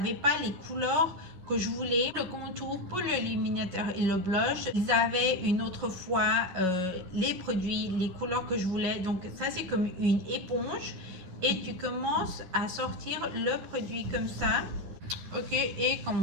pas les couleurs que je voulais. Le contour pour l'illuminateur et le blush, ils avaient une autre fois les produits, les couleurs que je voulais. Donc ça c'est comme une éponge et tu commences à sortir le produit comme ça. Ok, et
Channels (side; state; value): left; late; 11 ms